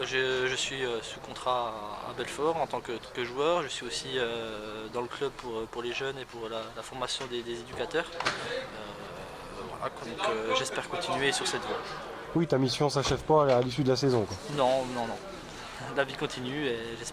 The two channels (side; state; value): both; identical; correlation 1.00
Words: suis sous contrat à Belfort en tant que joueur. Je suis aussi dans le club pour les jeunes et pour la formation des éducateurs. Voilà, donc j'espère continuer sur cette voie. Oui, ta mission s'achève pas à l'issue de la saison, quoi. Non. La vie continue et